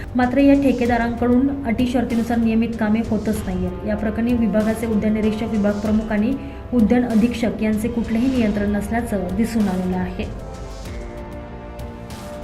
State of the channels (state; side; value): identical; both; correlation 1.00